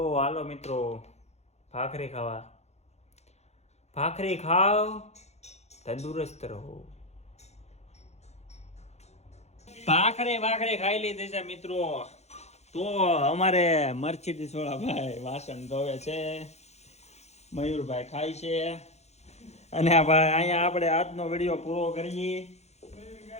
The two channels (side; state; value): right; late; 0.32 ms